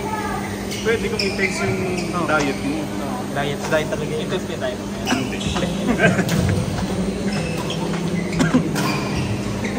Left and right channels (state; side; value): identical; both; correlation 1.00